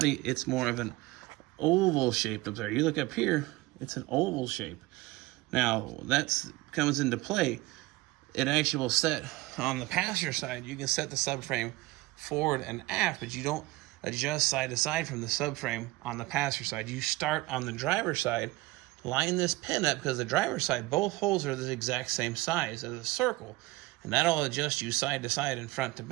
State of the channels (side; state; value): left; quieter; 20.1 dB